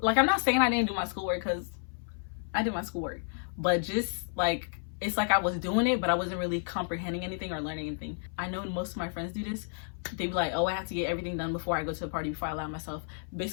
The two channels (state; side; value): silent; right; 57 dB below the other